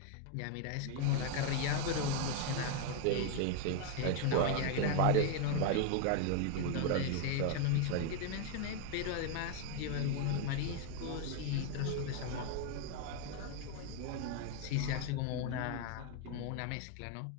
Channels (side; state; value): both; different; correlation 0.01